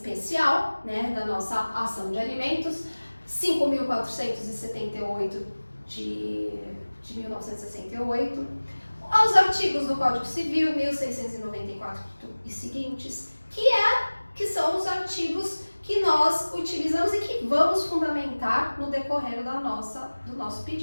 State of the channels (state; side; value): inverted; both; correlation -1.00